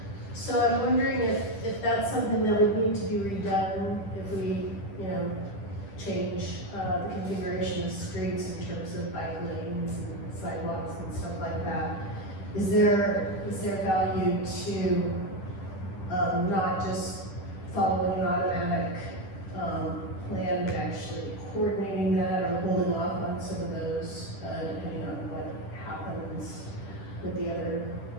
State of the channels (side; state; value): right; late; 10 ms